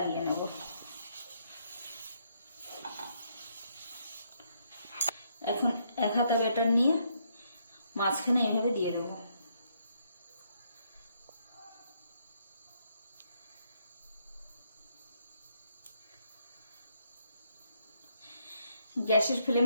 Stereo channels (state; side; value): inverted; both; correlation -0.74